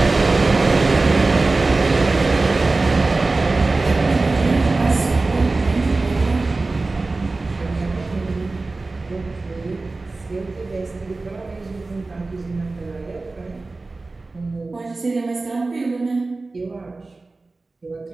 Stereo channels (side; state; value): left; quieter; 3.5 dB